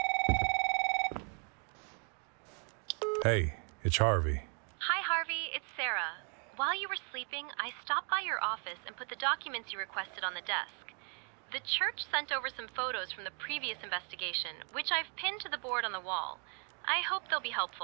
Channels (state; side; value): quieter; left; 39.5 dB